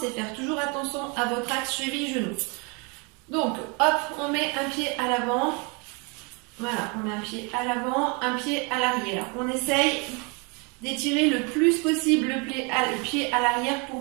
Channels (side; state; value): left; quieter; 32.0 dB